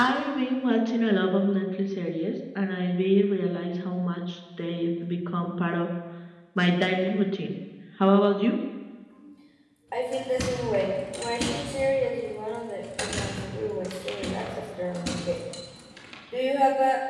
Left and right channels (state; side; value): identical; both; correlation 1.00